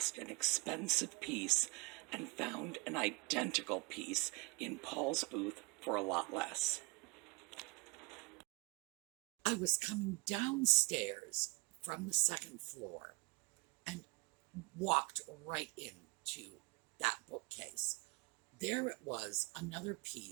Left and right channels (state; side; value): quieter; left; 26.2 dB